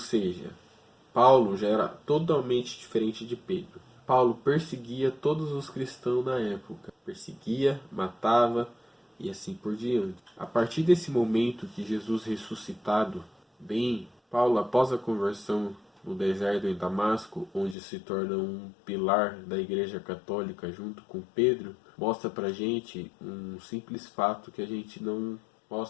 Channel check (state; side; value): drops out; right; at 17.8 s